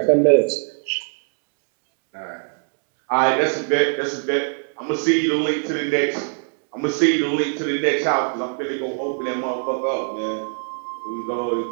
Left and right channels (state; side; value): silent; left; 64 dB below the other